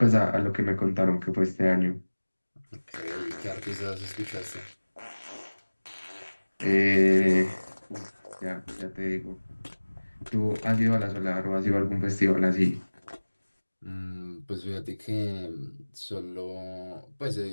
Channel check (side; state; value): both; inverted; correlation -1.00